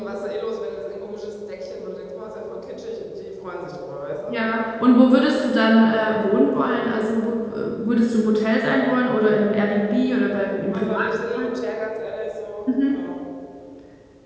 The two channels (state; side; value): identical; both; correlation 1.00